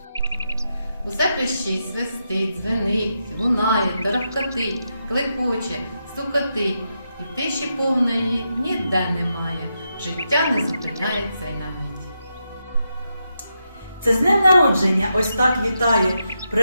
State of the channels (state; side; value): inverted; both; correlation -0.85